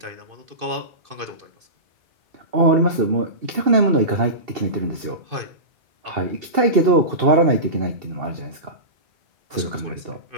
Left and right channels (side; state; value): left; late; 2.7 ms